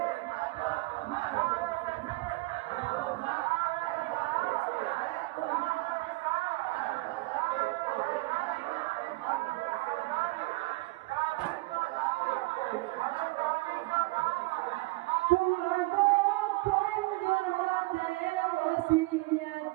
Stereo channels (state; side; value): quieter; left; 23.2 dB